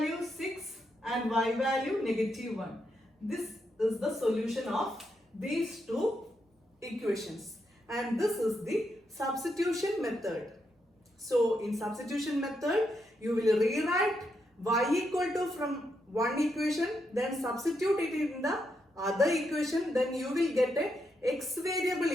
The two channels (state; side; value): normal; both; correlation 0.81